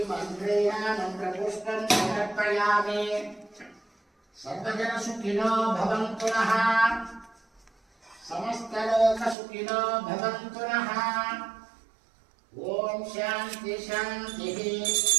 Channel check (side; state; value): left; drops out; at 9.3 s